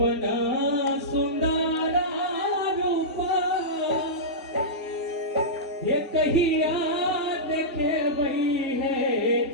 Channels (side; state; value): both; normal; correlation -0.14